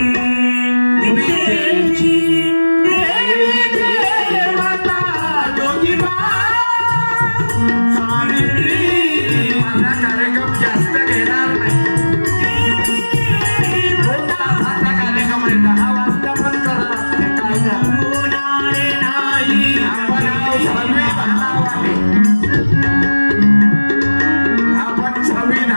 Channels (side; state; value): both; inverted; correlation -1.00